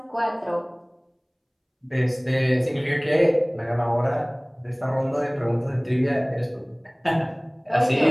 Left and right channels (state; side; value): identical; both; correlation 1.00